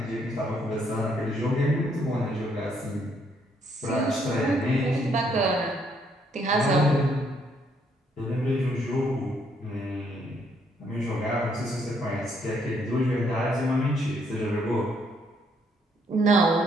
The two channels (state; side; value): normal; both; correlation 0.70